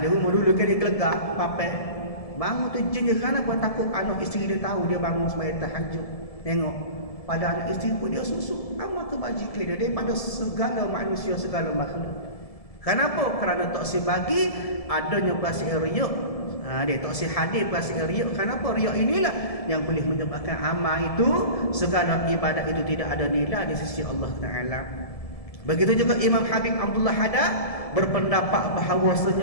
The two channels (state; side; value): late; right; 1.7 ms